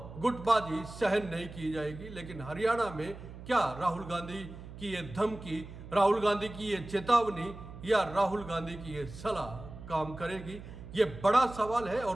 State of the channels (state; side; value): noise; right; hum, 14 dB below the sound